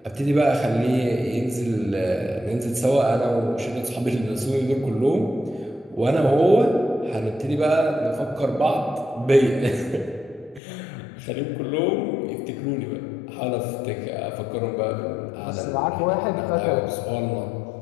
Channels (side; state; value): right; drops out; at 10.6 s